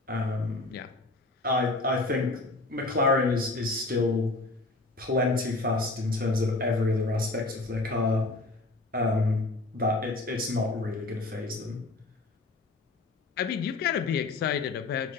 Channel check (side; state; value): right; quieter; 3.1 dB